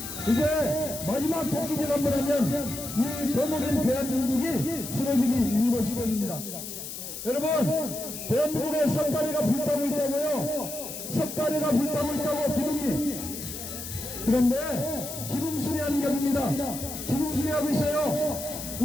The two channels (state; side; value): noise; left; hiss, 8 dB below the sound